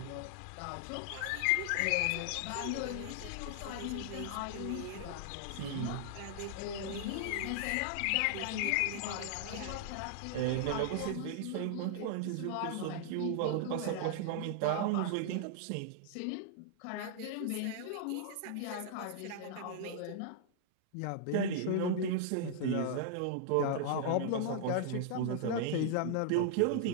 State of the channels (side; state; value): both; different; correlation -0.01